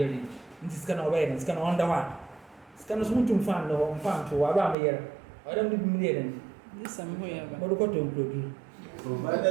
This can obey and it's going on the one. It's kind of smooth to find or found to around a year. I don't do million. This somewhere. But look at you.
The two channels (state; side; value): drops out; left; at 4.8 s